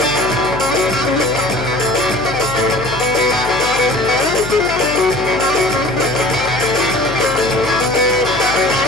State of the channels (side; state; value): left; noise; hum, 12 dB below the sound